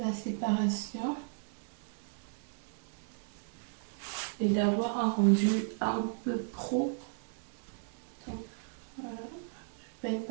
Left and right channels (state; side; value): silent; left; 54 dB below the other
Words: séparation. Et d'avoir un rendu un peu pro. Donc voilà, je ne peigne